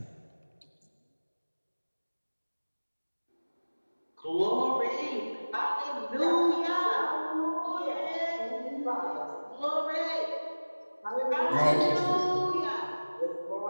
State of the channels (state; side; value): inverted; both; correlation -1.00